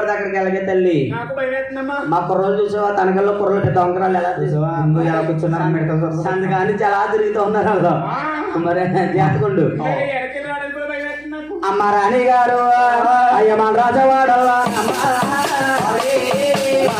అక్కడికి వెళ్ళగే తల్లి. మా కుర్రలు చూసావా? తనకల్లో కుర్రలు పెద్ద వంకరాలు ఎలా చూసావా? ఎలా కూర్చున్నారు అందుకని చాలా తిరుగుతూ ఉన్నారు. మరి జాతకుండు అమ్మ రాణి గారు అయ్య మన రాజవాడల్లా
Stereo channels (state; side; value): noise; right; hum, 30 dB below the sound